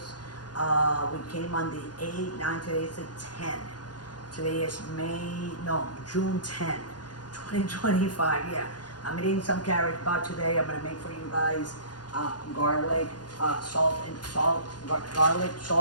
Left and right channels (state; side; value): late; right; 0.70 ms